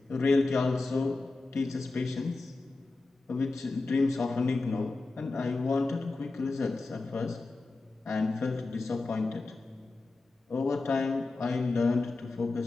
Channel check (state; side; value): quieter; right; 3.5 dB